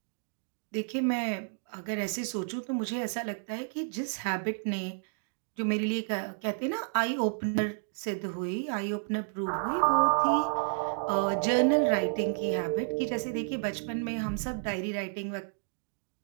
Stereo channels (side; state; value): left; silent; digital silence